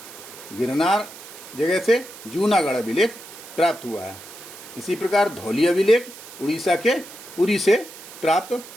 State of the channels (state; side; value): noise; right; hiss, 16 dB below the sound